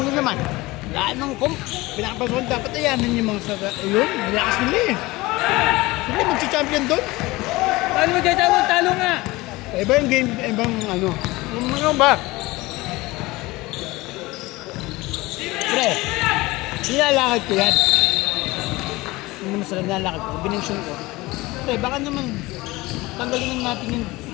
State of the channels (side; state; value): right; quieter; 20.9 dB